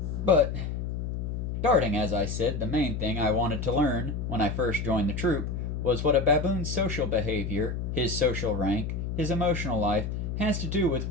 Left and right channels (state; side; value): noise; left; hum, 3 dB below the sound